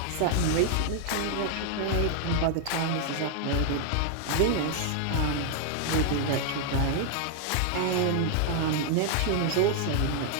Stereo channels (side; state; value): both; different; correlation 0.00